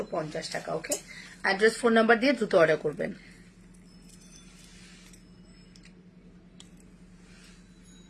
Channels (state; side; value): identical; both; correlation 1.00